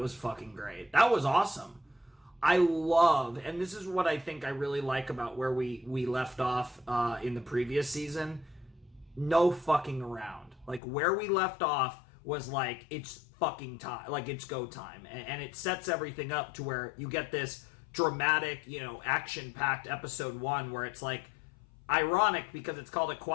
fucking great. That was awesome. I love, and this is what I think I really like about where we left off in the previous season, no fucking around. Like, where we left off was like, it's fucking time, like, it's go time, and it sets everything up to where you get this dramatic, action-packed Episode 1 where it's like, ironic because it's called A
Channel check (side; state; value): right; drops out; at 10.8 s